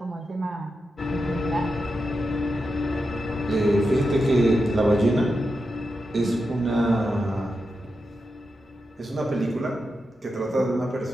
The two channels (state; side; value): normal; both; correlation 0.88